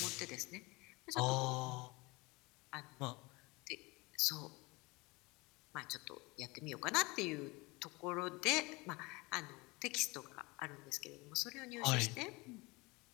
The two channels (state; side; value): quieter; right; 24.4 dB